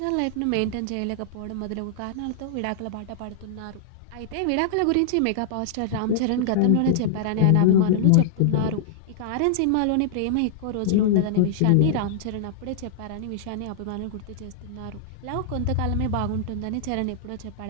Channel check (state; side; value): different; both; correlation -0.01